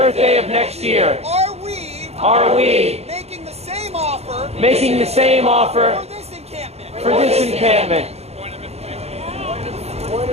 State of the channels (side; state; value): left; late; 0.30 ms